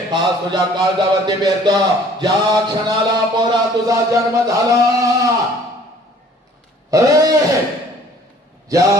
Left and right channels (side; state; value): both; normal; correlation 0.54